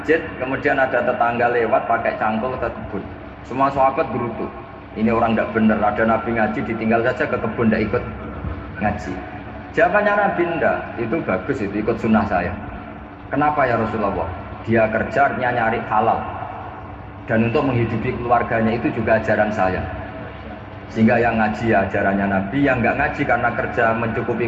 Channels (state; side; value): identical; both; correlation 1.00